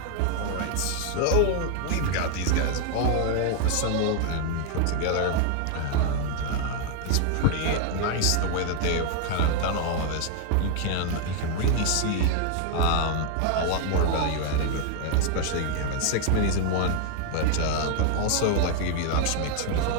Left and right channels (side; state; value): both; different; correlation 0.00